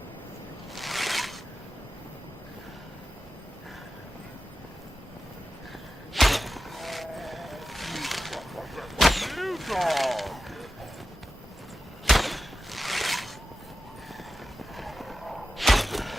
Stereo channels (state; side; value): normal; both; correlation 0.91